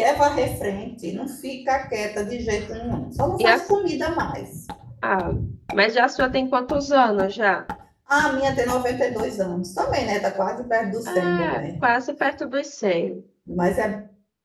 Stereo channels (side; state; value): both; identical; correlation 1.00